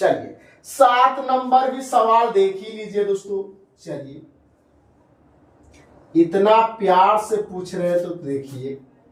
7 नंबर भी सवाल देख ही लीजिए दोस्तों। चलिए इतना प्यार से पूछ रहे हैं तो देखिए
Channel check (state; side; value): identical; both; correlation 1.00